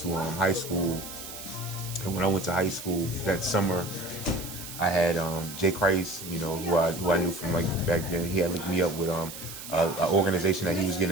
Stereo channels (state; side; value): noise; right; hiss, 11 dB below the sound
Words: high school, and when I went to high school that summer, I had Jay Christ, who I knew from like back then. He had linked me up with an organization that he was